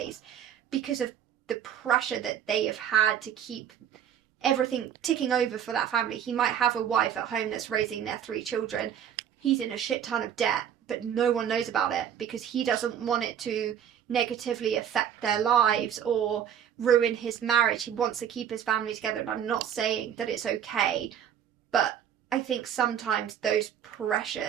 because of the pressure that they have had to keep everything ticking over for that family. He might have a wife at home that's raising their 3 children. He's in a shit ton of debt, but no one knows about it because he doesn't want it to negatively affect their lives or ruin his marriage. He wants to keep his family together, and I'm not saying that it's okay, but I think sometimes those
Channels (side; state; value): left; quieter; 9.3 dB